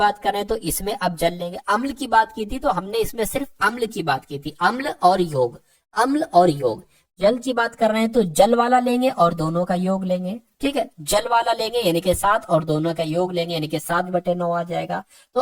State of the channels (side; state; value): both; identical; correlation 1.00